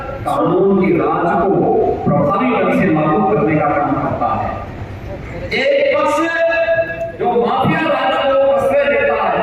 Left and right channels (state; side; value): identical; both; correlation 1.00